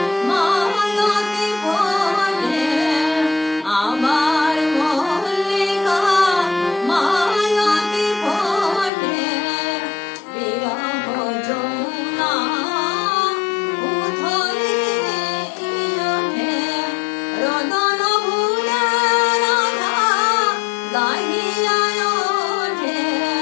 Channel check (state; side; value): drops out; right; at 8.9 s